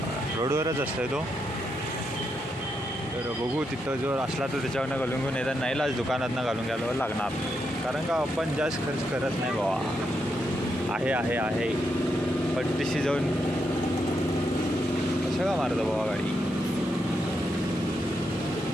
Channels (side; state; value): both; normal; correlation 0.82